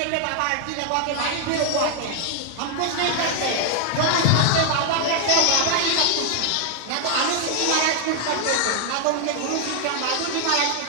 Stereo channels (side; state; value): both; different; correlation 0.00